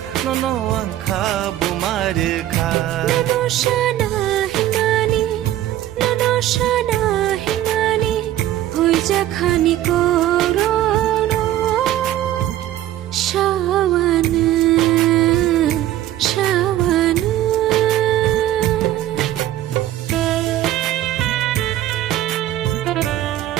নন আংখা বুমারখা ননসানা হিমানি হইজা খানি করোনো শাওয়ানো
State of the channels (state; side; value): quieter; left; 13.4 dB